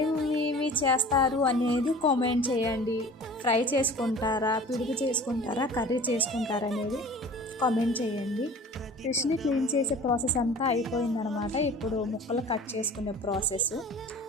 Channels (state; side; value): normal; both; correlation 0.43